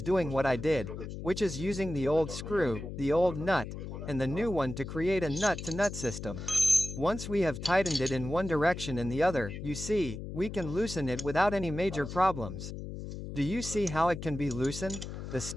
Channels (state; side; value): noise; left; hum, 8 dB below the sound